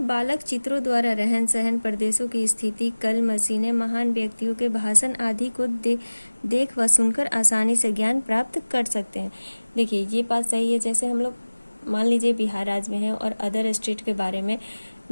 बालक चित्रों द्वारा रहन सहन, प्रदेशों की स्थिति, कल मशीनें, महान व्यक्तियों के भाषण आदि को देख व सुनकर आसानी से ज्ञान प्राप्त कर सकते हैं। देखिए, ये बात सही है। जैसे हम लोग मान लीजिए बिहार राज्य में हैं और अदर स्टेट के बारे में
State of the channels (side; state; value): both; inverted; correlation -1.00